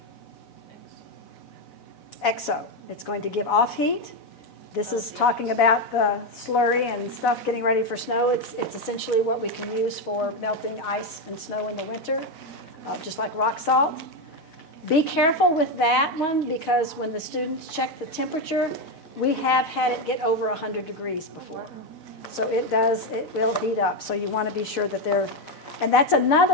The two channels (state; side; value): late; right; 4.0 ms